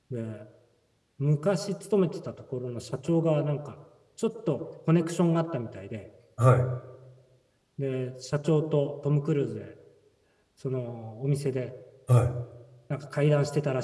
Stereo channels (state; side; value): identical; both; correlation 1.00